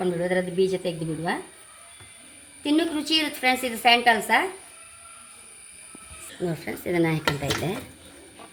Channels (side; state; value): both; identical; correlation 1.00